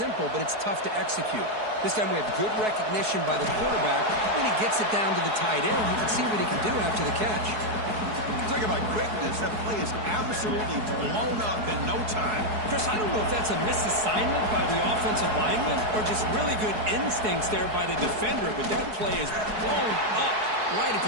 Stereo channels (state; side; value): late; left; 4.7 ms